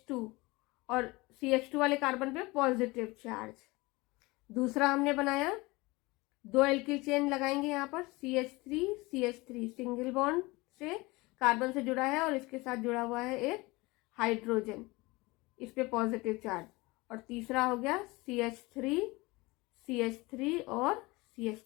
और CH2 वाले कार्बन पे पॉजिटिव चार्ज. दूसरा हमने बनाया 2 एल्किल चेन लगाएंगे यहाँ पर CH3 CH3 सिंगल बॉन्ड से कार्बन से जुड़ा है और इसके साथ जुड़ा हुआ है एक हाइड्रोजन, इस पे पॉजिटिव चार्ज. और तीसरा हो गया CH3 CH3 और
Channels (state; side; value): quieter; right; 23.0 dB